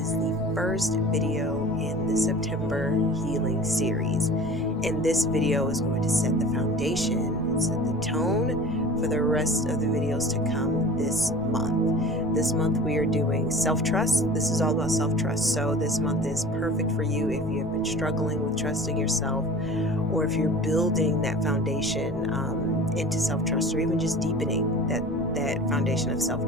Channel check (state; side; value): noise; left; rumble, 13 dB below the sound